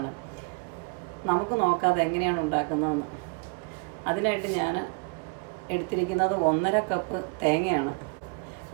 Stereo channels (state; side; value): quieter; left; 34.7 dB